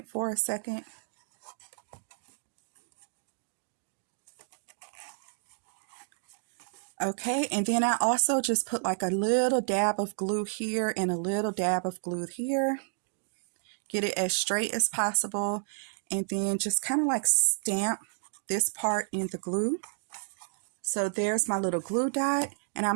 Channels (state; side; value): silent; left; digital silence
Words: for a second. Okay, and then I also just put like a little dab of glue here and a little dab of glue here. Get it as straight as possible, and then just kind of like stamp this part in the glue. So there's my little glue dot, and